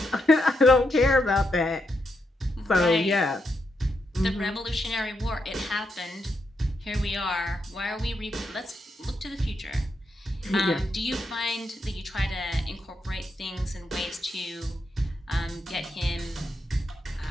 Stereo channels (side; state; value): both; normal; correlation 0.82